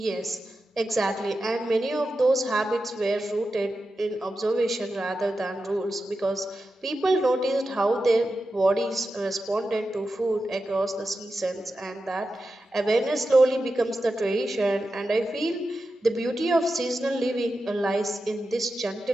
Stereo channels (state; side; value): normal; both; correlation 0.91